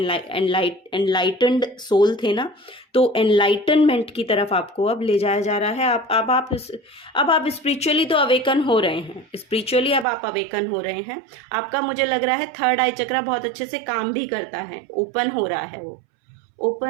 एनलाइटेंड सोल थे ना, तो एनलाइटनमेंट की तरफ आपको अब ले जाया जा रहा है। अब आप स्पिरिचुअली तो अवेकन हो रहे हैं, स्पिरिचुअली अब आप अवेकन हो रहे हैं। आपका मुझे लग रहा है थर्ड आई चक्रा बहुत अच्छे से काम भी करता है, ओपन हो रहा है वो,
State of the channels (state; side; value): drops out; left; at 10.1 s